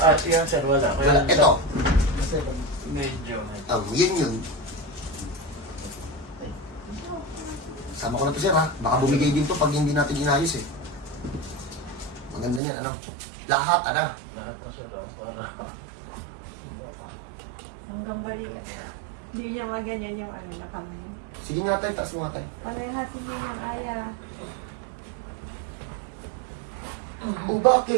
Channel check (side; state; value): left; drops out; at 12.6 s